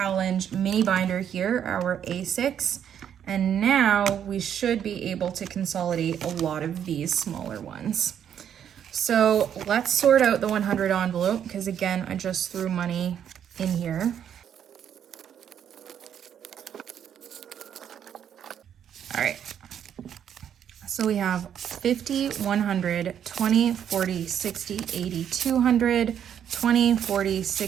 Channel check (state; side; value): quieter; left; 9.1 dB